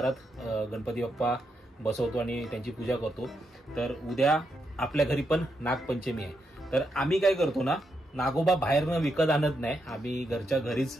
गणपती बाप्पा बसवतो आणि त्यांची पूजा करतो। तर उद्या आपल्या घरी पण नागपंचमी आहे। तर आम्ही काय करतो ना, नागोबा बाहेरनं विकत आणत नाही, आम्ही घरच्या घरीच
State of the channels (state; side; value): normal; both; correlation 0.82